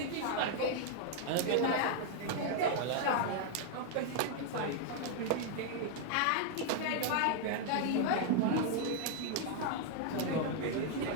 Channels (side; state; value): both; different; correlation 0.00